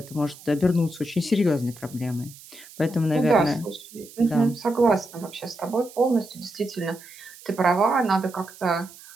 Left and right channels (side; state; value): right; noise; hiss, 20 dB below the sound